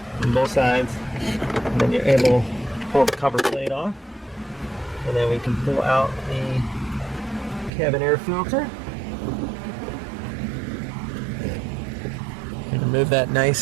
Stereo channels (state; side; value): drops out; left; at 7.7 s